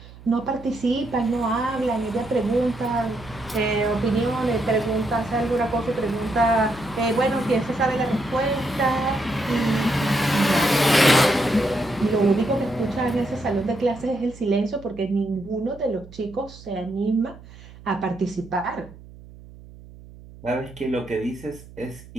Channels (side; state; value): right; noise; hum, 19 dB below the sound